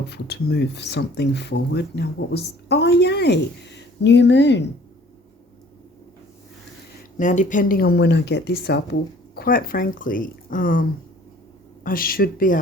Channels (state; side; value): normal; both; correlation 0.53